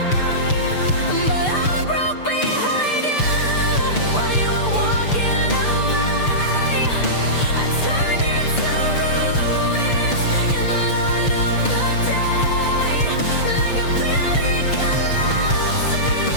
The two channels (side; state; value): right; late; 6.8 ms